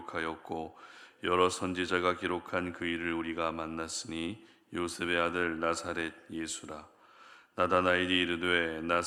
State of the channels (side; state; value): both; identical; correlation 1.00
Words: 여러 선지자가 기록한 그 일을 우리가 만났으니 요셉의 아들 나사렛 예수라. 나다나엘이 이르되